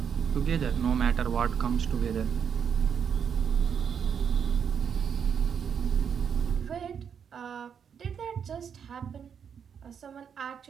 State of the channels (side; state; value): left; quieter; 7.4 dB